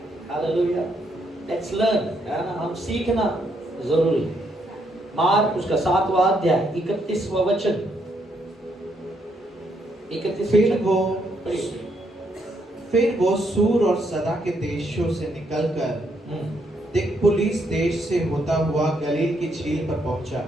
हालेलुया। लेट्स लर्न, है ना, हम सीखना जरूरी। मार्क उसका 7वां अध्याय 31वां वचन। 31। फिर वो सूर और सदा के देशों से निकलकर दिकपुलिस देश से होता हुआ गलील की झील पर पहुंचा।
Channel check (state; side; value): normal; both; correlation 0.75